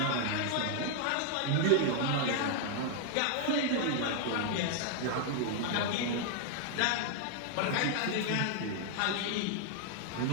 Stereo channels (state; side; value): different; both; correlation 0.00